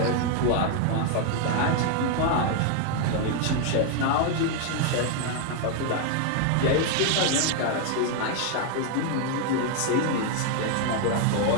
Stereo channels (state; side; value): different; both; correlation 0.00